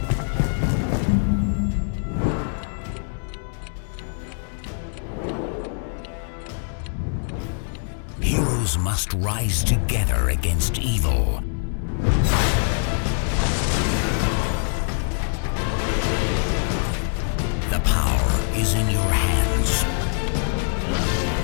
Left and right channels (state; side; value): silent; right; 63 dB below the other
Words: Heroes must rise together against evil. The power is in your hands.